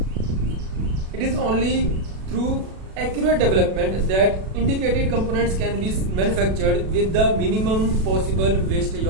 It is only through accurate development that indicated components can be manufactured with the minimum possible wastage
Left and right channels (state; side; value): late; left; 37 ms